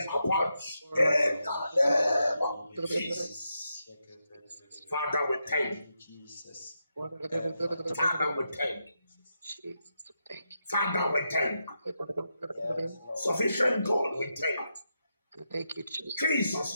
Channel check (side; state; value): both; inverted; correlation -0.84